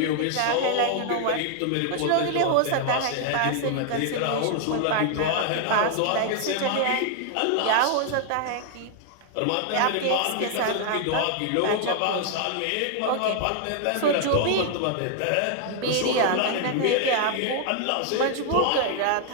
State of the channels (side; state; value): both; different; correlation 0.00